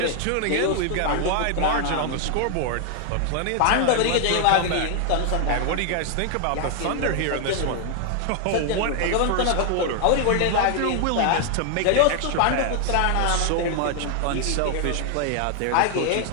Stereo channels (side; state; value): both; different; correlation 0.00